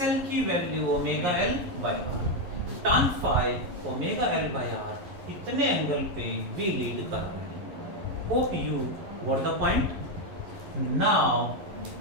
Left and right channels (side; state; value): left; late; 11 ms